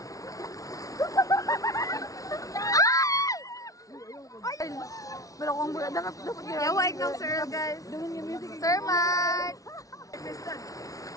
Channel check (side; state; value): right; late; 0.17 ms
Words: Pero kung dapat yawa ikaw, sir, guys. Sir Mark!